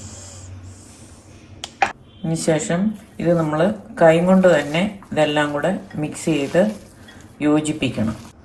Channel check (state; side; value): identical; both; correlation 1.00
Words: അതിന് ശേഷം ഇത് നമ്മൾ കൈ കൊണ്ട് തന്നെ ഇതെല്ലാം കൂടെ മിക്സ് ചെയ്ത് യോജിപ്പിക്കണം.